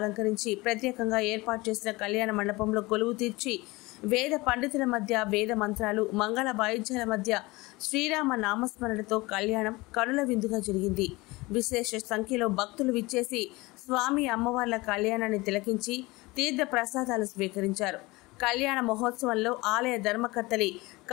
ప్రత్యేకంగా ఏర్పాటు చేసిన కళ్యాణ మండపంలో కొలువు తీర్చి వేద పండితుల మధ్య వేద మంత్రాలు మంగళ వాయిద్యాల మధ్య శ్రీరామ నామస్మరణతో కళ్యాణం కనుల విందుగా జరిగింది. విశేష సంఖ్యలో భక్తులు విచ్చేసి స్వామి అమ్మవార్ల కళ్యాణాన్ని తిలకించి తీర్థ ప్రసాదాలు స్వీకరించారు. కళ్యాణ మహోత్సవంలో ఆలయ ధర్మకర్తలి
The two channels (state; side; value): quieter; right; 22.4 dB